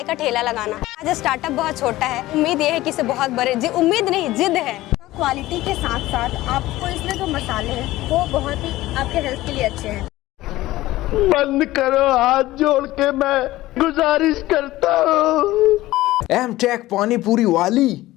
का ठेला लगाना। आज स्टार्टअप बहुत छोटा है, उम्मीद ये है कि इसे बहुत बड़े, उम्मीद नहीं जिद है। क्वालिटी के साथ साथ आपको इसमें जो मसाले हैं वो बहुत ही आपके हेल्थ के लिए अच्छे हैं। बंद करो, हाथ जोड़ के मैं गुजारिश करता हूँ। एमटेक पानी पूरी वाली।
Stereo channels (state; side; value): quieter; right; 17.0 dB